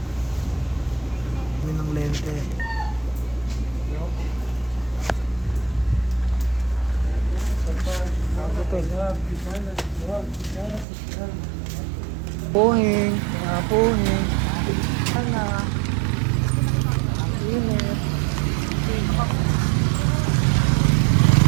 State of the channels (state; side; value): drops out; left; at 10.9 s